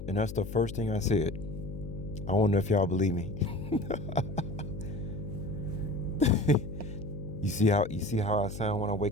and that's the first thing I said. I wonder if y'all believe me. You see how I sound when I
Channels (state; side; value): noise; left; hum, 9 dB below the sound